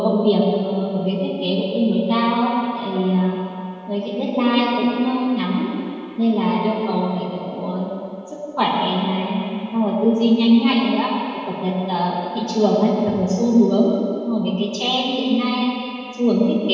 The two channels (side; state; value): both; identical; correlation 1.00